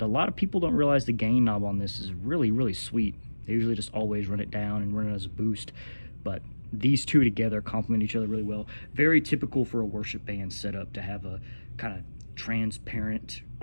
a lot of people don't realize the gain knob on this is really, really sweet. They usually just always run it down and run it as a boost, but these two together complement each other really well. Very typical for a worship band setup to have a kind of transparent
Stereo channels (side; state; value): both; inverted; correlation -1.00